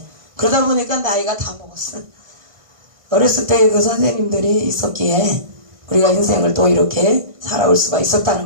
그러다 보니까 나이가 다 먹었어. 어렸을 때 그 선생님들이 있었기에 우리가 인생을 또 이렇게 살아올 수가 있었다는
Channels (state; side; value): late; left; 1.5 ms